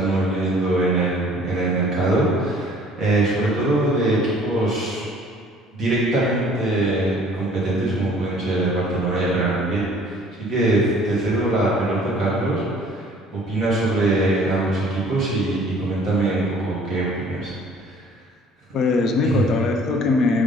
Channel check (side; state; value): both; normal; correlation 0.54